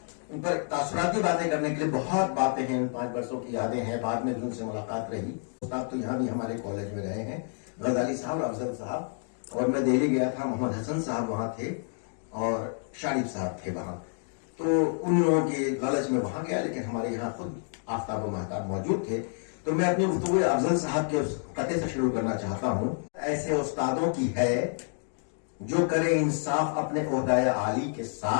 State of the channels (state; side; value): silent; right; 59 dB below the other